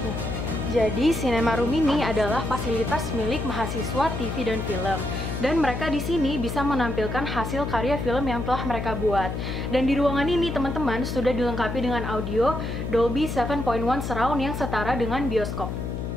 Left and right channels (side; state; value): left; noise; hum, 4 dB below the sound